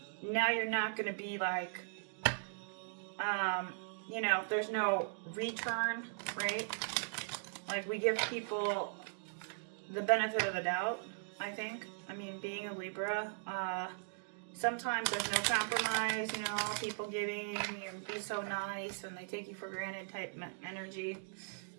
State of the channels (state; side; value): silent; left; digital silence